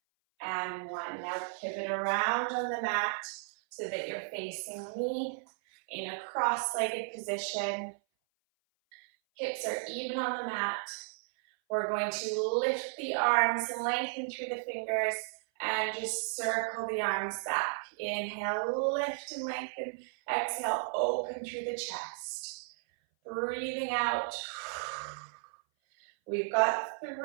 and 1. Now pivot around on the mat so that you're facing me in a cross-legged position. Hips are even on the mat. We're going to lift the arms, lengthen through the fingers, and just circle the arms back. Inhale, lift and lengthen. Exhale, open through the chest. Breathing out. We've got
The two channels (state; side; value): silent; left; 55 dB below the other